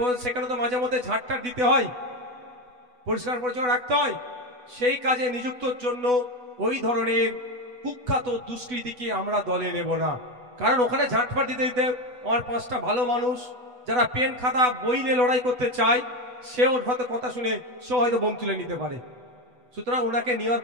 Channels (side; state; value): left; late; 8.1 ms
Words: সেখানে তো মাঝে মধ্যে ঝাড়টার দিতে হয়, পরিষ্কার পরিচ্ছন্ন রাখতে হয়, সেই কাজে নিযুক্তর জন্য ওই ধরনের কুখ্যাত দুষ্কৃতীকে আমরা দলে নেব না। কারণ ওখানে ঝাঁটফাট দিতে দিতে আমার 5টা ভালো মানুষ যারা পেন খাতা বই নিয়ে লড়াই করতে চায়, সে ওর হয়তো কথা শুনে সে হয়তো বোম তুলে নিতে পারে। সুতরাং ওনাকে নেওয়ার